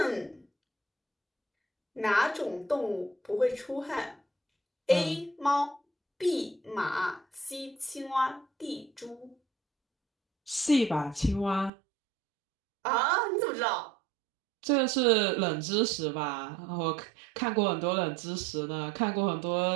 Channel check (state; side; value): drops out; left; at 11.7 s